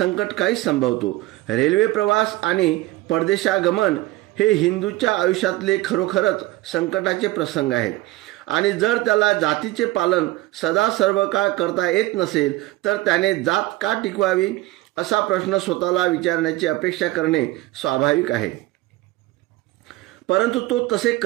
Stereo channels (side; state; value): left; quieter; 18.3 dB